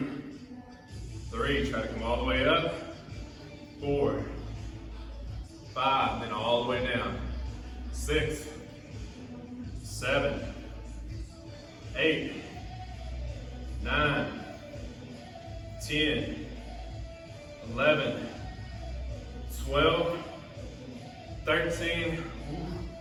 3, try to come all the way up. 4, 5, then all the way down. 6, 7, 8, 9, 10, 11, 12, 13,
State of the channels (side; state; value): both; identical; correlation 1.00